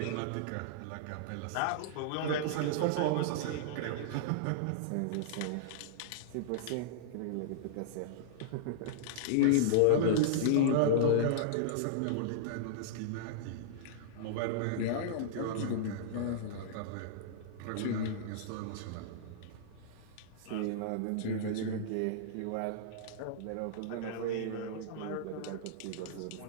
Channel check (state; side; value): different; both; correlation -0.02